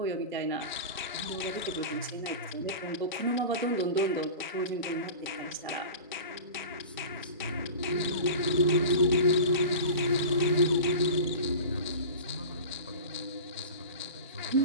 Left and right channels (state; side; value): inverted; both; correlation -0.33